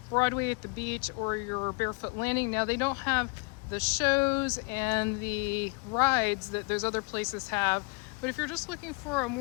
Broadway at the beach or your Barefoot Landing. Now they don't have the shows and the rides that those other places have. But if you're just looking for a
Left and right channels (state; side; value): quieter; right; 30.5 dB